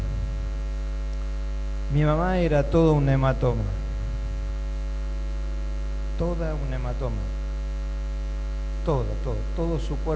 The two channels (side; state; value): both; identical; correlation 1.00